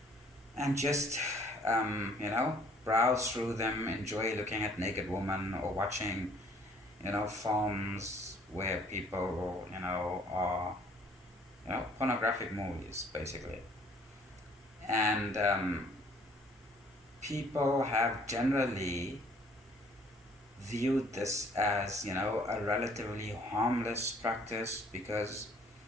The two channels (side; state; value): both; normal; correlation 0.59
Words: and just, browse through them, enjoy looking at naked women or watching, films where people, are pornographic movies basically. And people have generally viewed this as, a relatively harmless practice because,